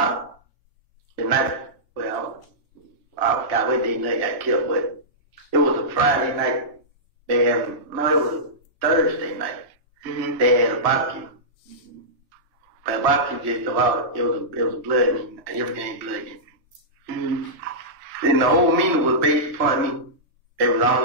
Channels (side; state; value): left; late; 1.7 ms